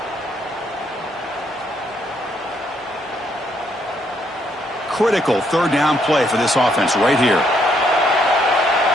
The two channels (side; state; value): both; normal; correlation 0.72